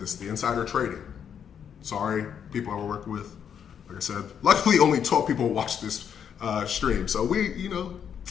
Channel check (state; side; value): quieter; right; 8.1 dB